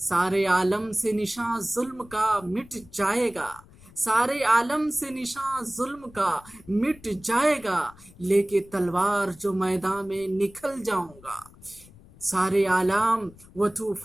عالم سے نشاں ظلم کا مٹ جائے گا، سارے عالم سے نشاں ظلم کا مٹ جائے گا، لے کے تلوار جو میدان میں نکل جاؤں گا۔ سارے عالم و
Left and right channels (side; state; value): left; noise; rumble, 23 dB below the sound